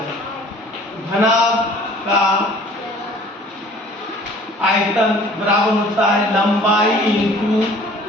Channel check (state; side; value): normal; both; correlation 0.51